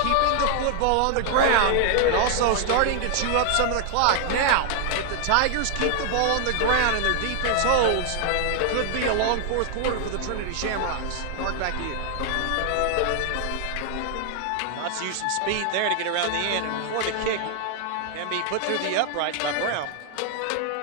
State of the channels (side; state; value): both; different; correlation 0.00